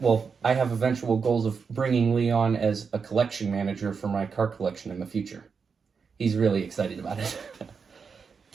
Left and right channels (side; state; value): left; quieter; 5.6 dB